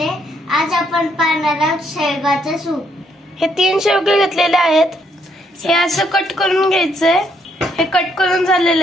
आहे। आज आपण पाहणार आहोत शेवगाचं सूप। हे 3 शेवगे घेतलेले आहेत। हे असं कट करून घ्यायचंय। हे कट करून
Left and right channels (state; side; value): normal; both; correlation 0.72